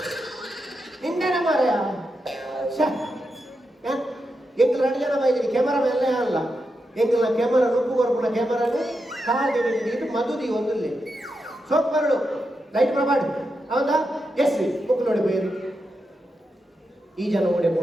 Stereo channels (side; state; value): both; normal; correlation 0.86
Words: ಇಂಡನೆ ಮಾರಯ ಎಂಗ್ಲ 2 ಜನ ಬೈದಿರಿ ಕ್ಯಾಮರಾ ಮೇಲೆ ಅಲ್ಲ ಎಂಗ್ಲ ಕ್ಯಾಮರಾ ನುಪ್ಪು ಕೊರ್ಪುನ ಕ್ಯಾಮರಾನು ಕಾದಿ ನೀರು ಮದುದಿ ಒಂದಲ್ಲಿ ಸೋಪ್ ಬರಡು ಲೈಟ್ ಪ್ರಮಾಡ್ ಅವಂದ ಎಸ್ ಬುಕ್ ನೋಡಿ ಬೇರು ಈ ಜನ ಓಡೆ